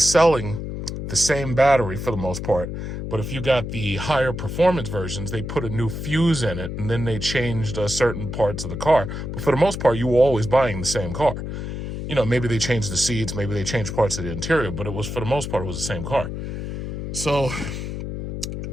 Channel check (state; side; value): noise; left; hum, 6 dB below the sound